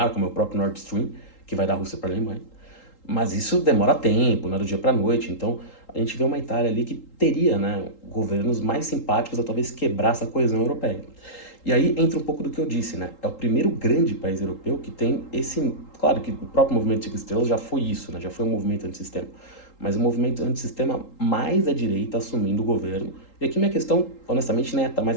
como é o próprio Nord Stream, que vai da Rússia para a Alemanha. Mas isso demora tempo, não é do dia para a noite. Então a gente vê uma Itália ali que teria, né, governos mais simpáticos a talvez quebrar essa coesão europeia. E aí entra um pouco do que eu disse, né? É o primeiro grande país europeu que tem esse... Claro que o próprio movimento Cinco Estrelas já foi isso, né? Já foi um movimento antissistema. Mas um movimento antissistema mais à direita assumindo o governo. E aqui minha questão, honestamente, não é estar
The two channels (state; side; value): late; right; 3.8 ms